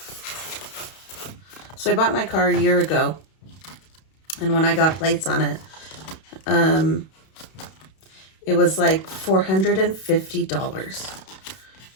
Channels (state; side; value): late; right; 32 ms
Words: So I bought my car a year ago, and when I got plates on it, it was like $450.